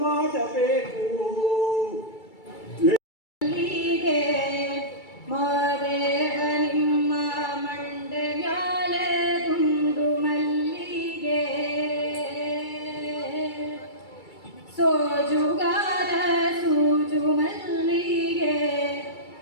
ಮಾಡಬೇಕು ಮಾದೇವ ನಿಮ್ಮ ಮಂಡೆ ಮ್ಯಾಲೆ ಗುಂಡು ಮಲ್ಲಿಗೆ ಸೋಜುಗಾರ ಸೂಜು ಮಲ್ಲಿಗೆ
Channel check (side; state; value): right; late; 2.3 ms